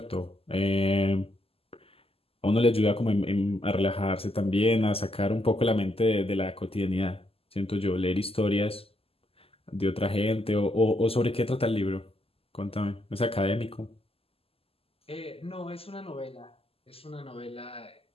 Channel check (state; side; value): late; right; 0.28 ms